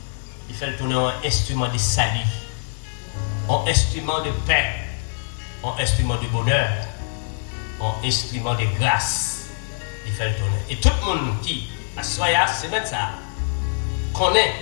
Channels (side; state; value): right; silent; digital silence